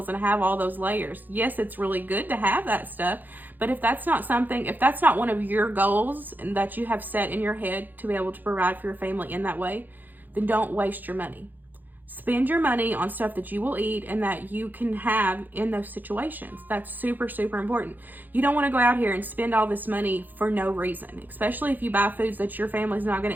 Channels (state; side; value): late; left; 0.086 ms